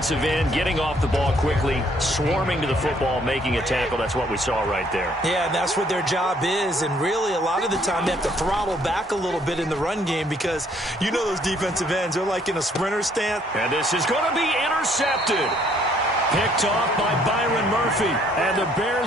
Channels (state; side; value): normal; both; correlation 0.64